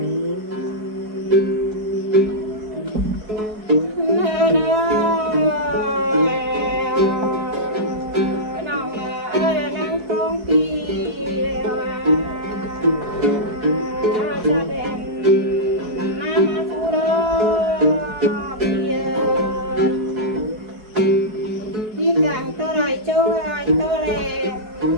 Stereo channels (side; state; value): left; late; 4.7 ms